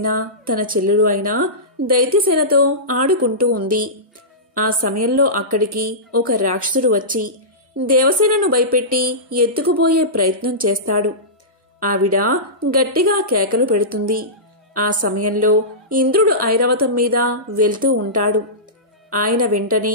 తన చెల్లెలు అయిన దైత్యసేనతో ఆడుకుంటూ ఉంది. ఆ సమయంలో అక్కడికి ఒక రాక్షసుడు వచ్చి దేవసేనను భయపెట్టి ఎత్తుకుపోయే ప్రయత్నం చేస్తాడు. ఆవిడ గట్టిగా కేకలు పెడుతుంది. ఆ సమయంలో ఇంద్రుడు ఐరావతం మీద వెళ్తూ ఉంటాడు. ఆయన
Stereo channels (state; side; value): normal; both; correlation -0.19